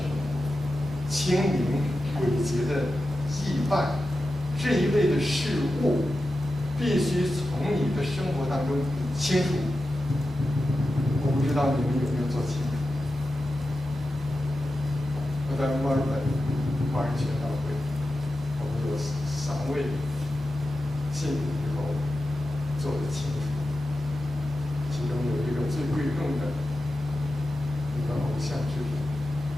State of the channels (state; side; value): normal; both; correlation 0.92